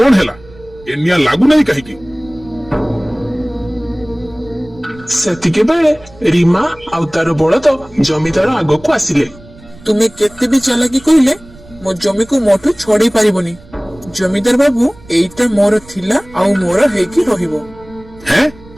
ହେଲା? ଏ ନିଆଁ ଲାଗୁନାହିଁ କାହିଁକି? ସେତିକି ବେଳେ ରୀମା ଆଉ ତାର ବଳଦ ଜମିଦାର ଆଗକୁ ଆସିଲେ। ତୁମେ କେତେ ବି ଚାଲାକି କହିଲେ ମୋ ଜମିକୁ ମୋଠୁ ଛଡେଇ ପାରିବନି। ଜମିଦାର ବାବୁ, ଏଇଟା ମୋର ଥିଲା ଆଉ ମୋର ହେଇକି ରହିବ। ହେଁ,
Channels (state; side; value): noise; right; rumble, 22 dB below the sound